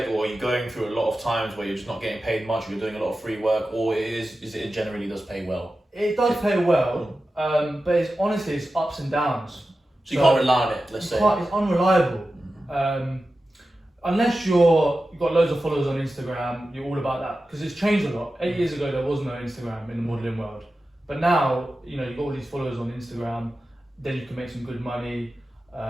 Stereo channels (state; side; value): normal; both; correlation 0.93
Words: or are you going through a lot of times where you're just not getting paid much, or you're doing a lot of free work, or it generally does pay well? It does pay well, but it's ups and downs. So you can't rely on it, let's say. It's unreliable. Unless you've got loads of followers on Instagram, you're all about that. Because it's changed a lot. 8 years ago, there was no Instagram in the modelling world. But now, you've got all these followers on Instagram, then you can make some good money.